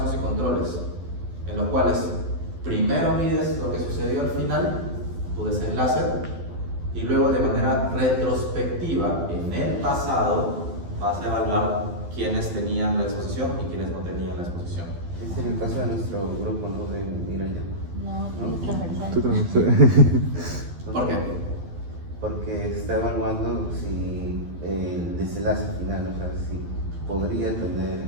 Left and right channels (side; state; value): left; late; 12 ms